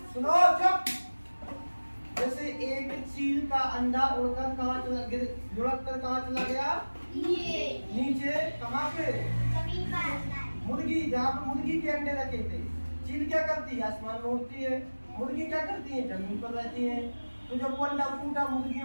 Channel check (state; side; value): inverted; both; correlation -1.00